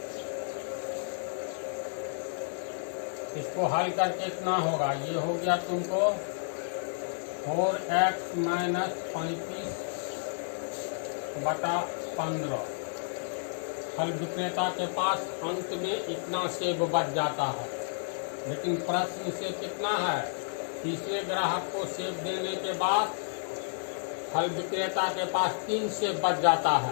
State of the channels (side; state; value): right; silent; digital silence